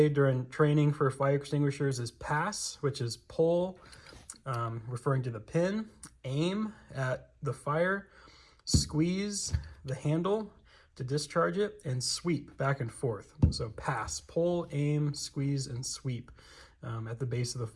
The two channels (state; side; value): identical; both; correlation 1.00